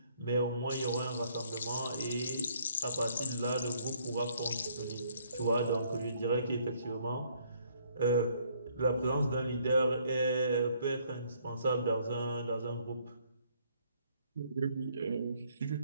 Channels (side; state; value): both; inverted; correlation -0.66